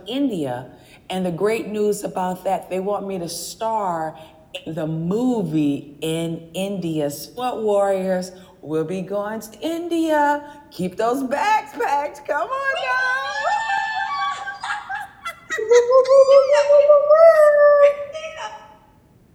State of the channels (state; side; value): identical; both; correlation 1.00